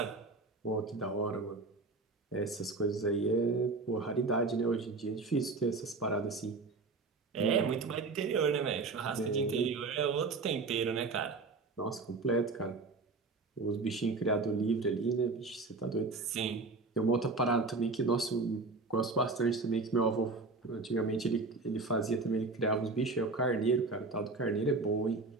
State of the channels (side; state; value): left; quieter; 3.8 dB